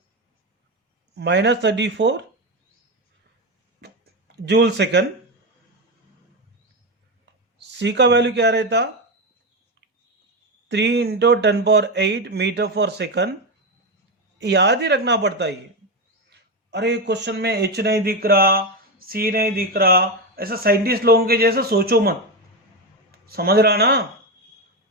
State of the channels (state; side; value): normal; both; correlation 0.13